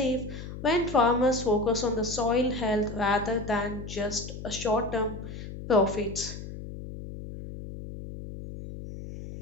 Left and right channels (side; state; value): left; noise; hum, 10 dB below the sound